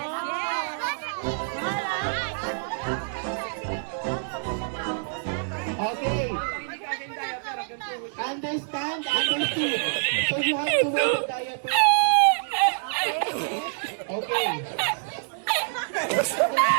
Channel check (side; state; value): left; silent; digital silence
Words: Okay. Understand? Understood. So you have to wear the diaper. Okay.